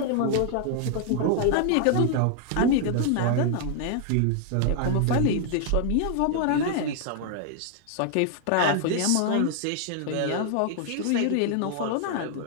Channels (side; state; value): both; different; correlation 0.00